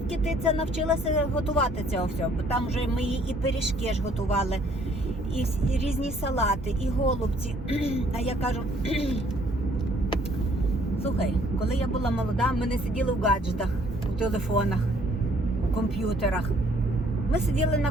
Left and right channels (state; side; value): normal; both; correlation 0.62